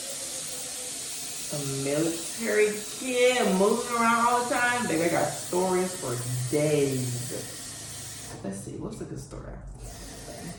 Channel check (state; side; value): identical; both; correlation 1.00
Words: a military kid, moving around all the time. Baby, I got stories for days. Let's see, what's a good story?